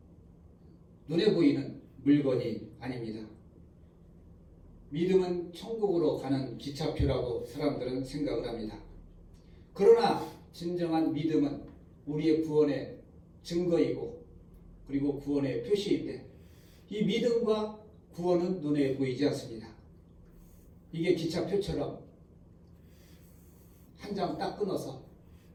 눈에 보이는 물건이 아닙니다. 믿음은 천국으로 가는 기차표라고 사람들은 생각을 합니다. 그러나 진정한 믿음은 우리의 구원의 증거이고 그리고 구원의 표시인데 이 믿음과 구원은 눈에 보이지 않습니다. 이게 기차표처럼 한 장 딱 끊어서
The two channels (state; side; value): identical; both; correlation 1.00